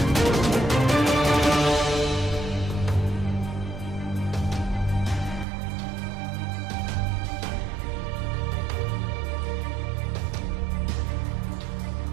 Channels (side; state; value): left; drops out; at 5.5 s